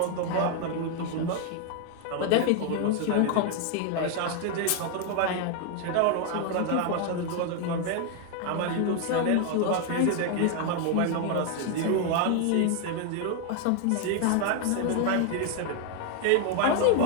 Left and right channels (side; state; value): both; different; correlation 0.01